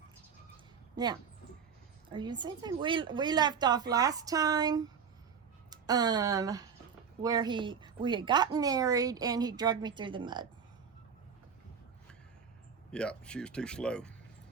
Now, are you saying something? We left off last time where we had gotten married and he dragged me through the mud. Yeah, she was too slow.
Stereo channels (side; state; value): left; quieter; 6.7 dB